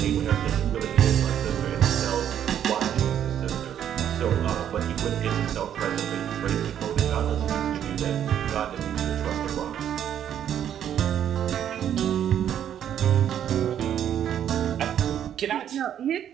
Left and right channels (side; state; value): left; quieter; 9.8 dB